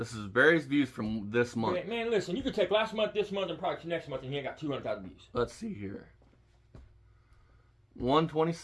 is Barry's views from this month. man, listen, you could take last month, this month, and probably next month, and he ain't got 200,000 views. Let's see here.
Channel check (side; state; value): both; identical; correlation 1.00